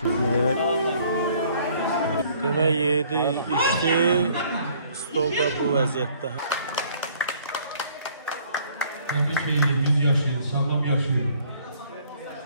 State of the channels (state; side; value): inverted; both; correlation -0.59